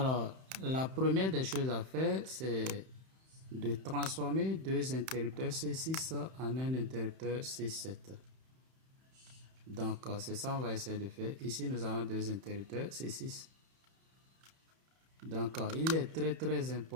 la première des choses à faire, c'est de transformer deux interrupteurs C6 en un interrupteur C7. Donc, c'est ça qu'on va essayer de faire. Ici, nous avons deux interrupteurs C6. Donc, il est très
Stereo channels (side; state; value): left; late; 31 ms